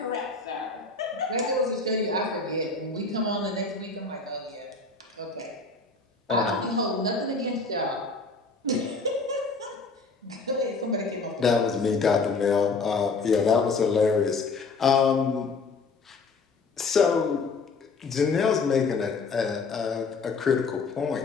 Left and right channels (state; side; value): quieter; right; 4.2 dB